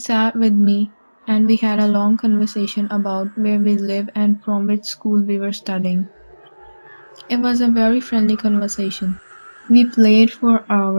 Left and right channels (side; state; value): both; inverted; correlation -1.00